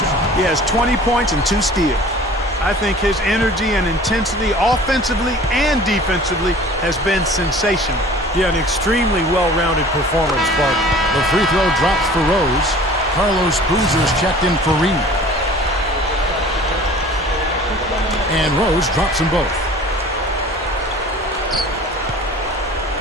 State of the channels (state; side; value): normal; both; correlation 0.45